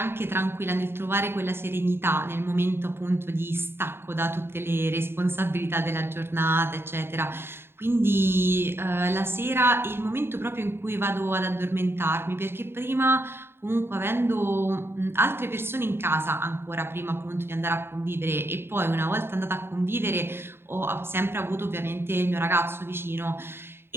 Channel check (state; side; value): late; left; 0.11 ms